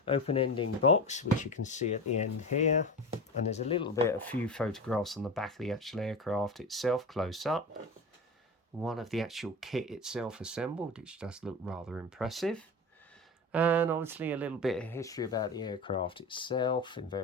open ending box, which you can see at the end here. And there's a few photographs on the back of the actual aircraft itself, close up. One of the actual kit itself assembled, which does look rather impressive. And obviously a little bit of history about the aircraft itself in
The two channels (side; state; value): both; normal; correlation 0.27